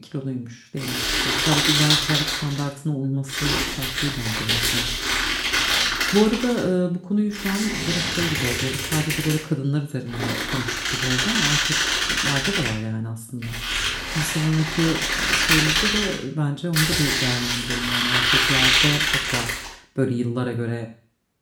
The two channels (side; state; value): both; identical; correlation 1.00